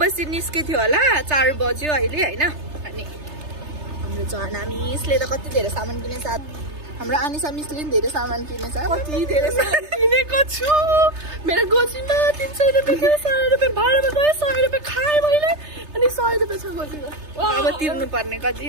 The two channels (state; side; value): late; left; 3.3 ms